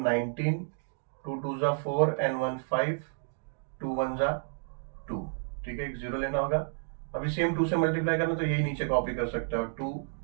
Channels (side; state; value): left; silent; digital silence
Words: 19, 2 2 जा 4 एंड 1 5, 2 1 जा 2। ठीक है, एक 0 लेना होगा, अभी सेम 2 से मल्टीप्लाई करना, तो यही नीचे कॉपी कर सकते हो, 2